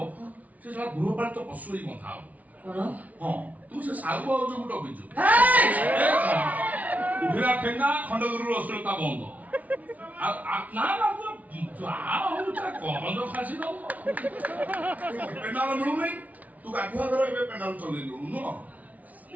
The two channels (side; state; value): left; late; 0.072 ms